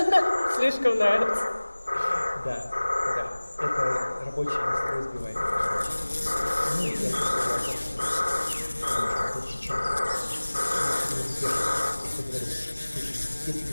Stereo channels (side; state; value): both; inverted; correlation -1.00